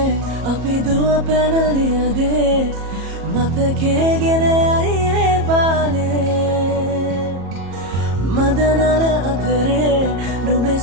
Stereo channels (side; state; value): left; late; 34 ms